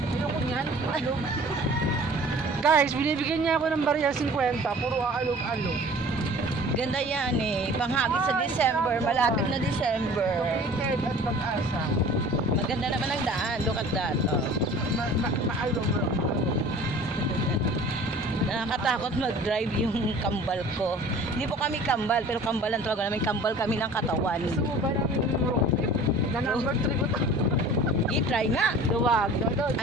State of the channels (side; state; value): both; normal; correlation 0.45